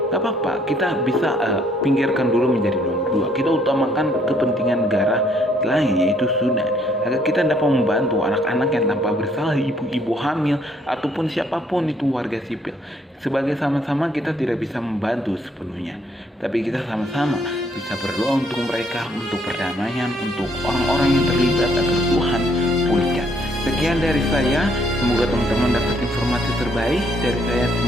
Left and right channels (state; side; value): normal; both; correlation 0.67